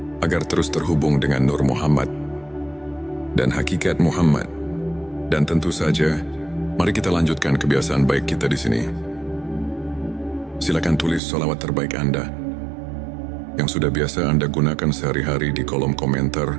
agar terus terhubung dengan Nur Muhammad dan hakikat Muhammad. Dan tentu saja, mari kita lanjutkan kebiasaan baik kita di sini. Silakan tulis sholawat terbaik Anda yang sudah biasa Anda gunakan sehari-hari di kolom komentar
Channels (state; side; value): drops out; left; at 11.2 s